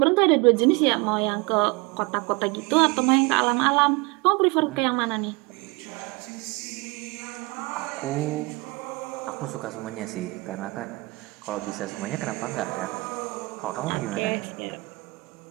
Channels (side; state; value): left; quieter; 25.8 dB